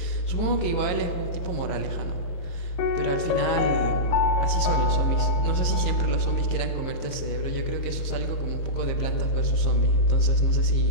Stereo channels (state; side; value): late; right; 22 ms